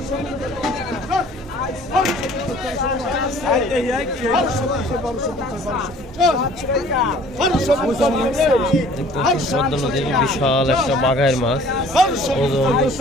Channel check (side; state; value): both; normal; correlation 0.52